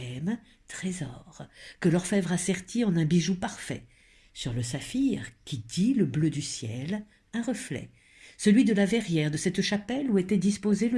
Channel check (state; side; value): identical; both; correlation 1.00